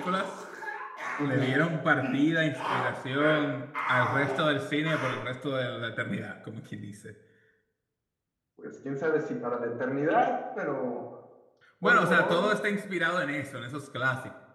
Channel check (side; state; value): both; identical; correlation 1.00